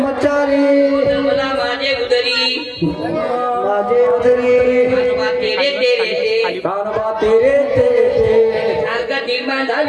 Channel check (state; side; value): identical; both; correlation 1.00